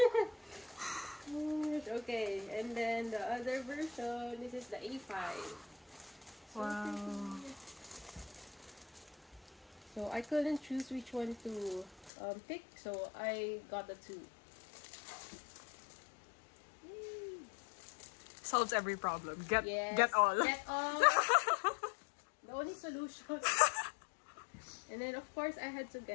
Okay, and then the other version, this is the A5. So Wow. pretty. So I couldn't choose which one to pick, so I got the two. Yay. Solves every problem. Get Yes, all. Get all. The only solution. And then of course I had to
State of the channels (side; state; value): right; drops out; at 12.1 s